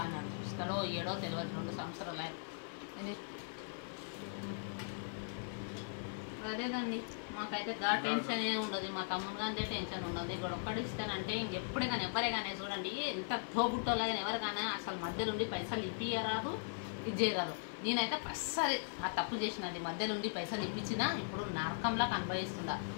అన్నాడు ఇస్తాడో ఏడో తెలియదు 2 సంవత్సరాలు అదేదండి మాకైతే టెన్షన్ ఏ ఉండదు మా తమ్ముడు కానీ టెన్షన్ ఉండదు ఇక్కడ ఒక్కటి ఇస్తానంటే ఇంకెప్పుడే కానీ ఎవరే కానీ చూడండి ఎంత తోబుట్టోలా కానీ ఎవరు కానీ అసలు మధ్యలో ఉండి పైసలు ఇప్పియరాదు ఇది చేయరాదు నేనైతే అస్సలు ఆ తప్పు చేసినది మధ్యలో ఉండి పైసలు ఇప్పించినా ఇప్పుడు నరకంలా అనుభవిస్తుందా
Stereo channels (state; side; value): silent; right; 52 dB below the other